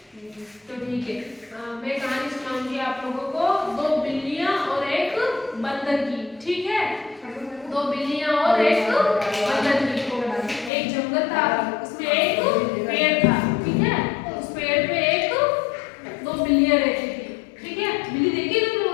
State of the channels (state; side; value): drops out; right; at 10.7 s